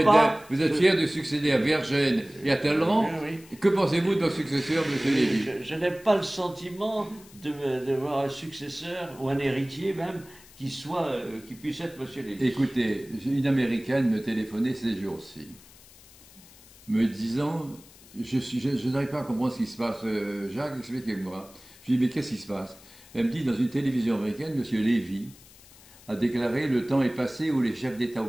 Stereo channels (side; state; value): left; noise; hiss, 23 dB below the sound